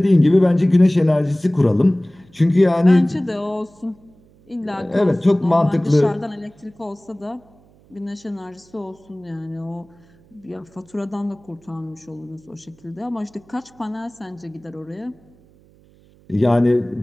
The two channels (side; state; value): right; noise; hum, 29 dB below the sound